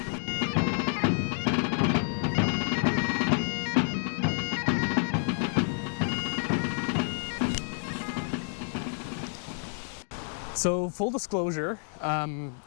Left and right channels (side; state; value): right; silent; 58 dB below the other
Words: So, full disclosure, I